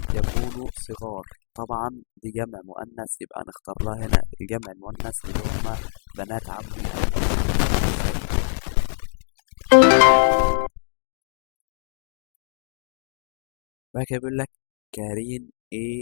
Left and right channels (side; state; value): right; silent; digital silence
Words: يكون صغار. طبعا دي جمع مؤنث، يبقى نختار لها هنا الجمع المؤنث اللي هما بنات عمي. بعد كده بيقول لك كارين.